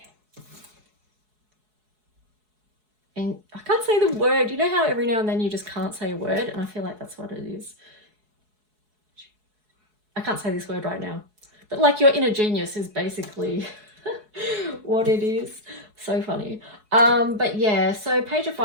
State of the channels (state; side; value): late; left; 4.7 ms